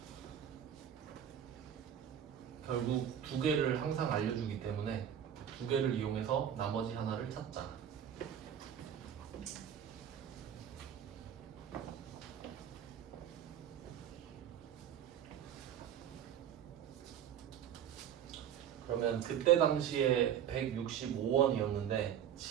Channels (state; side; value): quieter; left; 9.5 dB